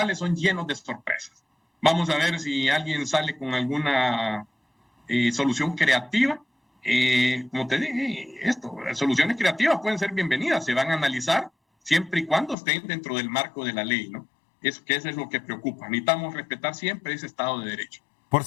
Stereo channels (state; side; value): drops out; right; at 12.6 s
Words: son llenos de sorpresas. Vamos a ver si alguien sale con alguna solución creativa. Como te dije, las soluciones creativas pueden ser bienvenidas, se van a analizar siempre y cuando estén dentro del marco de la ley, ¿no? Eso es lo que preocupa. Necesitamos respetar siempre ese Estado de Derecho. Por